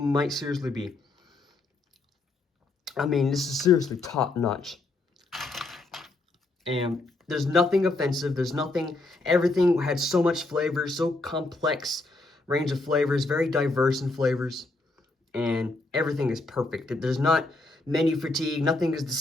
seriously be. I mean, this is seriously top notch. And there's nothing offensive. There's nothing, everything had so much flavor, so complex range of flavors, very diverse in flavors. And everything is perfect. There's not menu fatigue. Nothing is the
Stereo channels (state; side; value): quieter; right; 3.1 dB